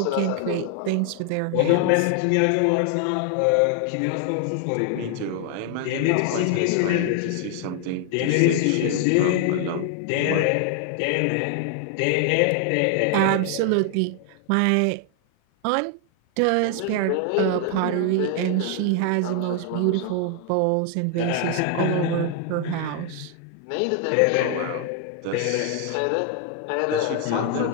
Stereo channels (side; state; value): both; different; correlation 0.00